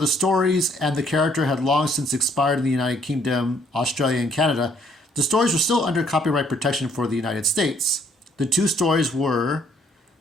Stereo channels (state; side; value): normal; both; correlation 0.65